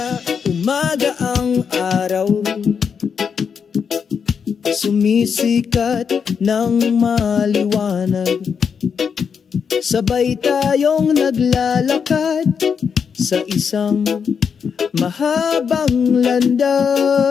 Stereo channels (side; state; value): right; quieter; 6.6 dB